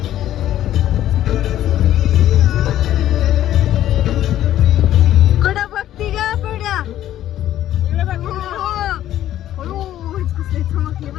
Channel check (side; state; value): right; quieter; 12.5 dB